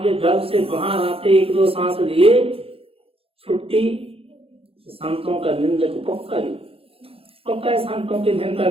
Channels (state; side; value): late; left; 0.27 ms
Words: के गर्भ से बाहर आते एक दो सांस लिए छुट्टी। संतों का निंदक पक्का संतों की निंदा